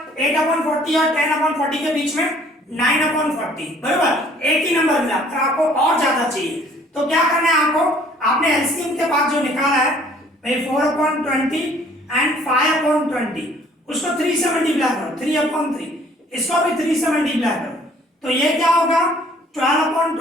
8/40 और 10/40 के बीच में 9/40, बराबर। एक ही नंबर मिला, पर आपको और ज्यादा चाहिए। तो क्या करना है आपको, आपने एलसीएम के बाद जो निकाला है भाई 4/20 एंड 5/20 उसको 3 से मल्टीप्लाई करो, 3/3, इसको भी 3 से मल्टीप्लाई करो। तो ये क्या होगा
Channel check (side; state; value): both; normal; correlation 0.57